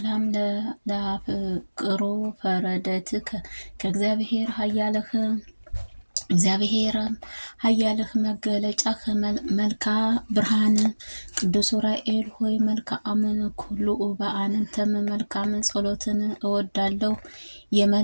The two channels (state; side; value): inverted; both; correlation -1.00